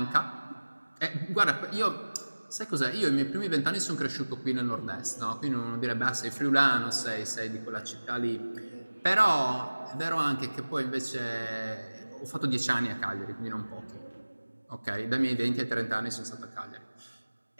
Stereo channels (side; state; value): both; inverted; correlation -1.00